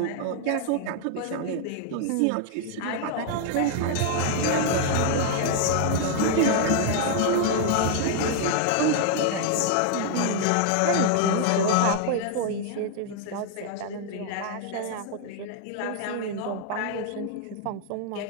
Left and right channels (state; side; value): different; both; correlation 0.00